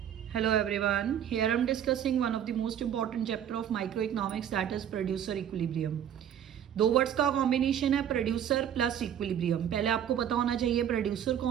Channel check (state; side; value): quieter; left; 9.7 dB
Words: Hello everyone. Here I'm discussing one of the most important chapter of microeconomics, that is producer equilibrium. दो words का combination है producer plus equilibrium. पहले आपको पता होना चाहिए प्रोड्यूसर